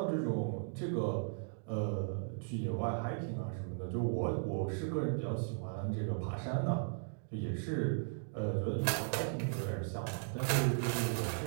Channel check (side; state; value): left; silent; digital silence